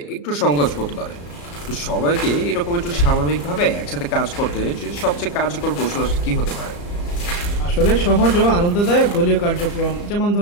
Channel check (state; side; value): late; right; 34 ms